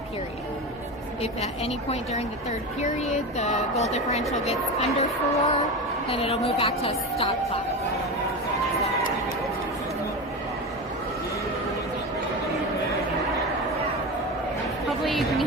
period. If at any point during the third period the goal differential gets under 4, then it'll move back to a stop clock. Hopefully you can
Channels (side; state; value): both; normal; correlation 0.23